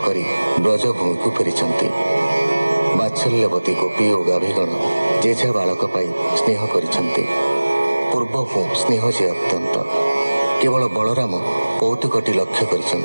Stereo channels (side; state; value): both; inverted; correlation -1.00